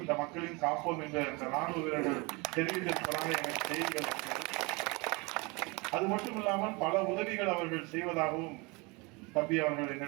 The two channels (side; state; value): left; quieter; 27.5 dB